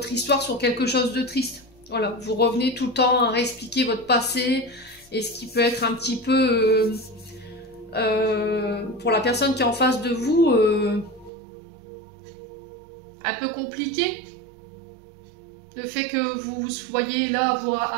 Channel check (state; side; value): drops out; left; at 11.3 s